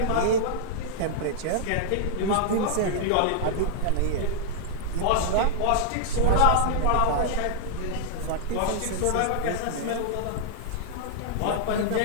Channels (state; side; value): different; both; correlation -0.01